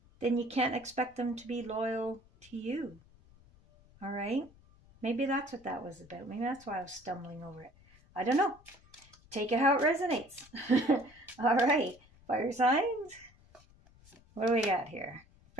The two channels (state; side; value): noise; left; rumble, 27 dB below the sound